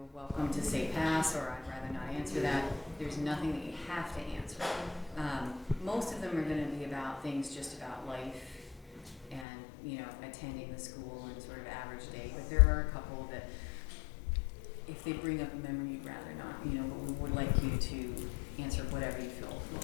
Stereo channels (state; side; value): drops out; right; at 9.5 s